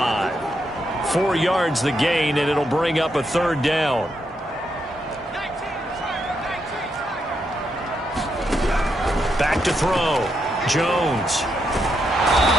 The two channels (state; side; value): normal; both; correlation 0.80